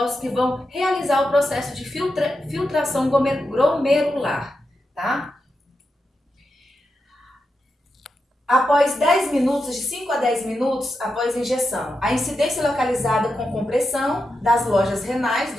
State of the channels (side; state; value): both; normal; correlation 0.88